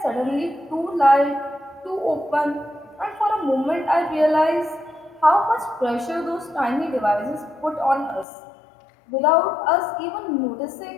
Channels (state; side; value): drops out; right; at 8.2 s